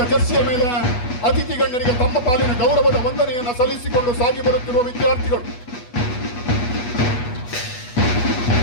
ಜರ್ಸಿಯ ಮೇಲೆ ಅತಿಥಿ ಗಣ್ಯರಿಗೆ ತಮ್ಮ ಪಾಲಿನ ಗೌರವದ ವಂದನೆಯನ್ನು ಸಲ್ಲಿಸಿಕೊಂಡು ಸಾಗಿ ಬರುತ್ತಿರುವ ವಿದ್ಯಾರ್ಥಿಗಳು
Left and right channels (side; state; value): right; late; 8.2 ms